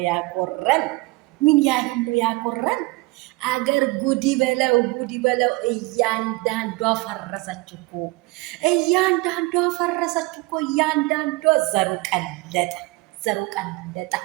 ያኮረን? ምን ያህል ነው ያኮረን? አገር ጉዲ በለው ጉዲ በለው። እያንዳንዷ ፈረሰች እኮ እያንዳንዷ ፈረሰች እኮ እያንዳንዷ ዘሩ ቀለጠ ዘሩ ቀለጠ።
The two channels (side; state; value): left; quieter; 23.6 dB